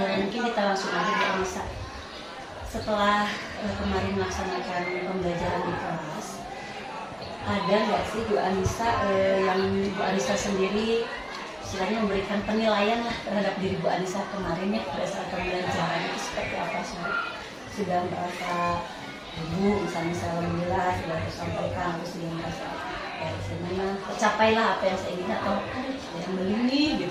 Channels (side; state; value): both; identical; correlation 1.00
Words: mungkin kita langsung aja Bu Anissa. Setelah kemarin melaksanakan pembelajaran di kelas, ada nggak sih Bu Anissa yang Bu Anissa sendiri istilahnya memberikan penilaian lah terhadap diri Bu Anissa kemarin ya pada saat pembelajaran itu seperti apa sih Bu? Sudah merasa Bu misalnya alhamdulillah sudah tersampaikan, terus dia merasa ya sebenarnya tercapailah apa yang saya ingin atau yang belum nih